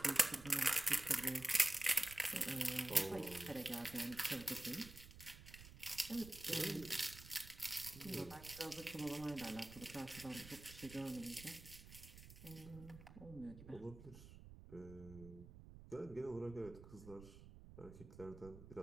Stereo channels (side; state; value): right; noise; rumble, 15 dB below the sound